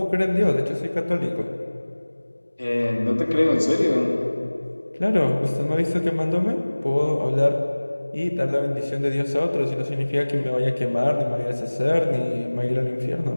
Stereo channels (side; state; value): both; inverted; correlation -1.00